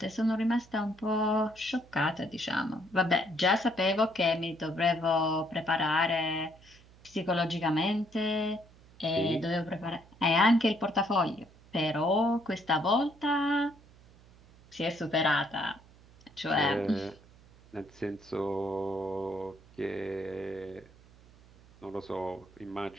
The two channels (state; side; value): noise; right; hum, 25 dB below the sound